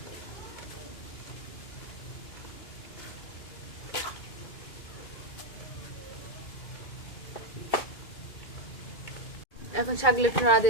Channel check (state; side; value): late; right; 2.3 ms